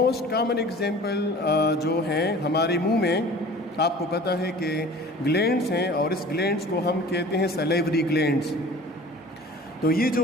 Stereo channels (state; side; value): normal; both; correlation 0.43